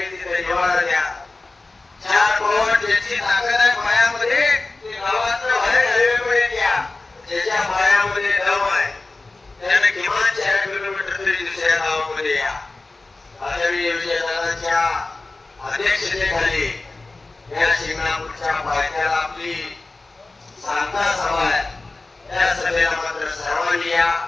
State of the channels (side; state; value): right; quieter; 3.3 dB